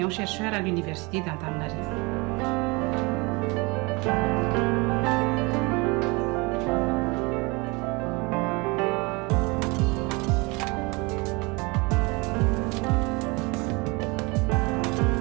à l'Université d'Antananarivo.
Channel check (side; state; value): left; quieter; 26.8 dB